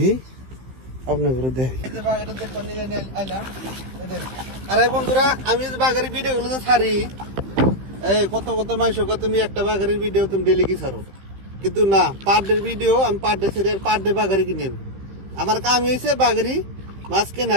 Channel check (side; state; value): left; late; 15 ms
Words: আপনার ঘরে দেখি। আরে বন্ধুরা, আমি বাগারের ভিডিও গুলো তো ছাড়ি, এই কত মাইশ তুমি একটা বাগারের ভিডিও তুমি ডেলি কি ছাড়ো, কিন্তু না, পার ডে ভিডিও আমি পার ডে ছেড়ে পার ডে বাগারি কিনে। আমার কাম হয়েছে বাগারি মাছ কেনা